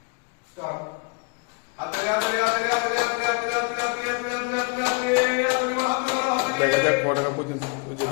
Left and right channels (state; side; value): quieter; right; 33.8 dB